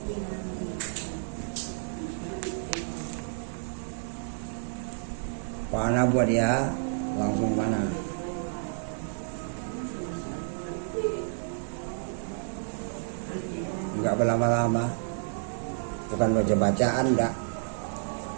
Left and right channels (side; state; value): left; silent; digital silence